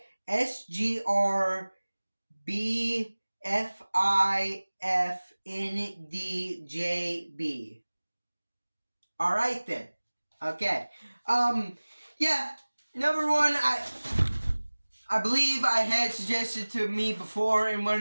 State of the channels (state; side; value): inverted; both; correlation -1.00